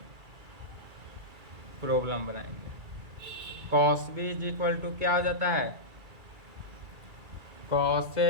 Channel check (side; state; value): left; late; 2.3 ms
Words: प्रॉब्लम बनाएंगे। Cos B is equal to क्या हो जाता है, cos A